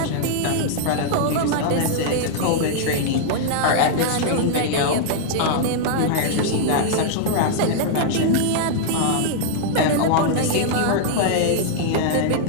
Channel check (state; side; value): different; both; correlation -0.01